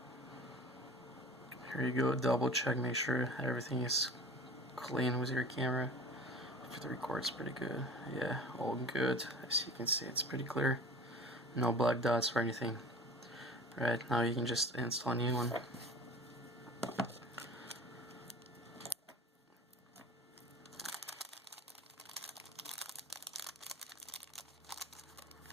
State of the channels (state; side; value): normal; both; correlation 0.40